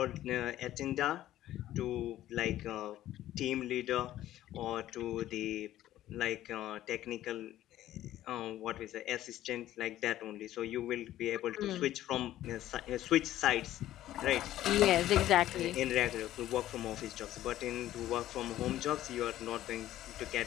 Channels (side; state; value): right; quieter; 13.6 dB